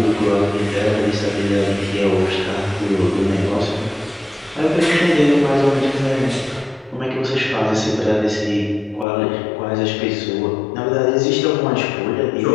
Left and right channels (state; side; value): drops out; right; at 9.1 s